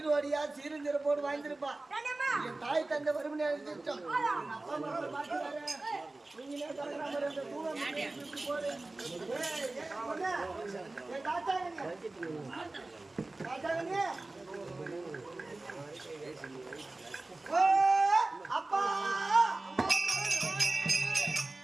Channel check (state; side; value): quieter; left; 3.0 dB